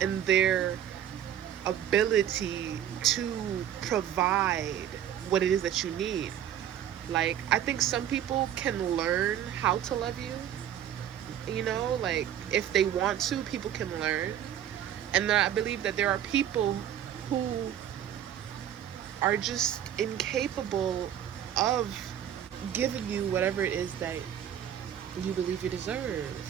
their ability to provide what it is that you need. Like, I think some people can learn how to love you, you know, like if they want to, people can learn. And then I believe that there are people who are just incapable of giving you whatever it is that you believe you deserve.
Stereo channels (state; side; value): quieter; left; 10.3 dB